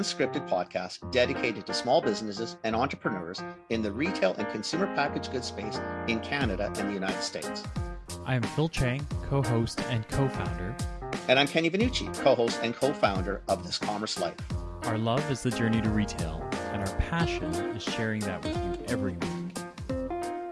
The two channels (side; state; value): both; identical; correlation 1.00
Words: podcast dedicated to small businesses and entrepreneurs in the retail and consumer packaged goods space in Canada and the United States. I am Phil Chang, co-host and co-founder. And I'm Kenny Vanucci, co-host and co-founder of This Commerce Life. Our love is the journey to retail, and our passion is sharing that with you every week.